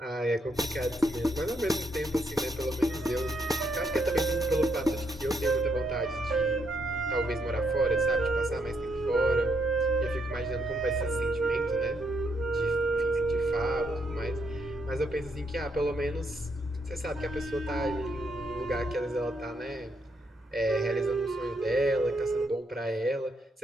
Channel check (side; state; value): both; normal; correlation 0.76